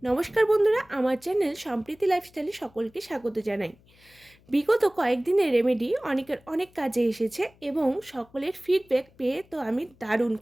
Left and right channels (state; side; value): noise; left; hum, 29 dB below the sound